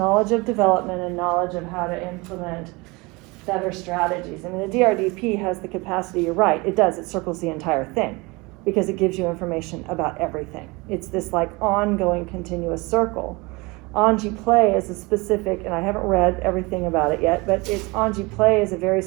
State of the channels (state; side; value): quieter; left; 25.2 dB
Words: of development and knowledge of how to implement better strategies. I mean, the DRDP has the capacity, you're right, it does, it circles the entire thing, because it gives you information about everything. It's this like ongoing continuous circle. Anji Play is a specific, and I haven't read everything about it yet, but Anji Play is a very